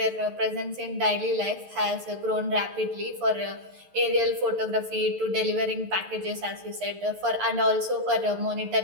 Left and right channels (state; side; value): late; left; 11 ms